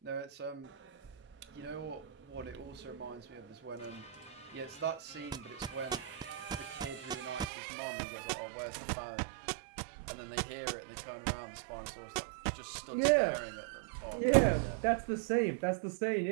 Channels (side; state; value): left; drops out; at 7.5 s